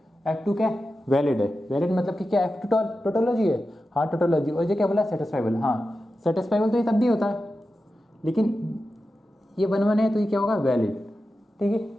F2 क्या वैलिड है, वैलिड मतलब कि क्या F2 टोटोलॉजी है, हाँ टोटोलॉजी। और ये क्या बोला, सेटिस्फाइबल, हाँ सेटिस्फाइबल तो ये तब भी होता है, लेकिन ये 1 1 है तो ये क्या होगा, वैलिड। ठीक है,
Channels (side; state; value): both; normal; correlation 0.92